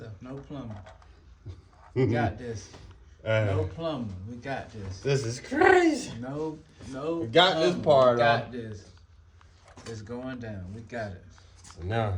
No plumbing. We got this. No plumbing. We got this. This is crazy. No. We got this part We got off. this. It's going down. We got it. So now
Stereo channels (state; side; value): identical; both; correlation 1.00